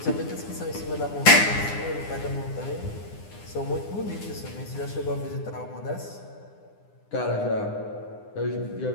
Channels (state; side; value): late; right; 9.8 ms